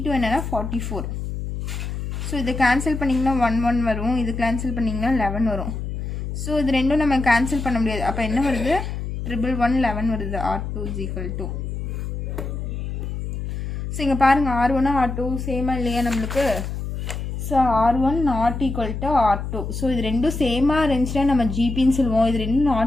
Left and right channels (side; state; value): left; noise; hum, 5 dB below the sound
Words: என்னென்னா 44. ஸோ இதை கேன்சல் பண்ணிங்கன்னா 1 வரும், இது கேன்சல் பண்ணிங்கன்னா 11 வரும். ஸோ இது ரெண்டும் நம்ம கேன்சல் பண்ண முடியாது. அப்போ என்ன வருது, 11 வருது. R2 is equal to. So இங்கே பாருங்கள், R1 R2 சேமாக இல்லையா நம்மளுக்கு. So R1 not equal to R2. So இது ரெண்டும் சேமாக இருந்துச்சுன்னா நம்ம ஜிபின்னு சொல்லுவோம். இது ரெண்டும்